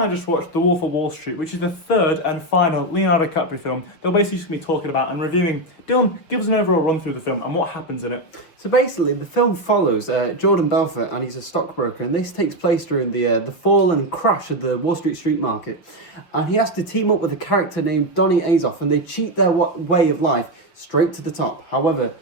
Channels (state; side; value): late; right; 5.8 ms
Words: I just watched The Wolf of Wall Street, which is the third and final Leonardo DiCaprio film. They'll basically just be talking about and reviewing. Dylan, give us an overall run through the film and what happens in it. So basically, the film follows Jordan Belfort, and he's a stockbroker, and this takes place during the fall and crash of the Wall Street market. And he has to team up with a character named Donny Azoff, and they cheat their way of life straight to the top. However,